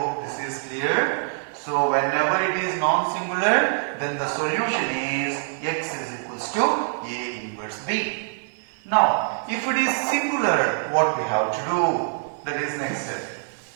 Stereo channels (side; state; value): left; silent; 62 dB below the other